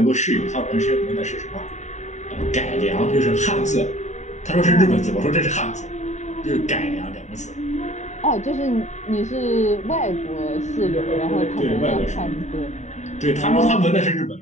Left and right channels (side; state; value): right; late; 0.34 ms